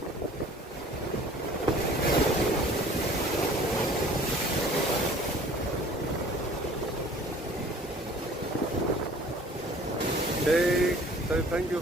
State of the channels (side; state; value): both; normal; correlation 0.50